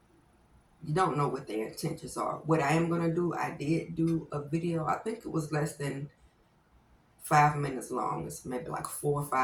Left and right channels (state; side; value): identical; both; correlation 1.00